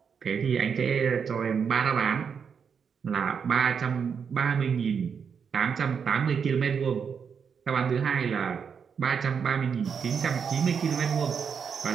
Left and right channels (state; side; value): quieter; left; 6.6 dB